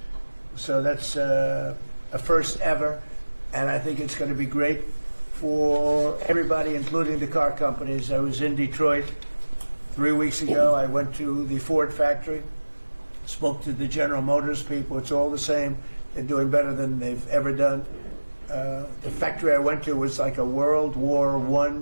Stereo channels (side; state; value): both; inverted; correlation -1.00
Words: So that's a first ever, and I think it's going to be great for everybody, including the car companies. I was in Detroit 3 weeks ago. I went to the Ford factory, spoke to the General Motors people. It's all the same. They're doing better than they've ever done. The factory I went to was like a World War I,